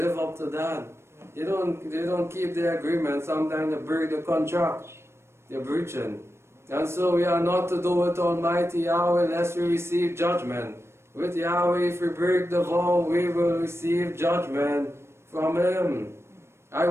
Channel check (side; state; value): left; late; 0.13 ms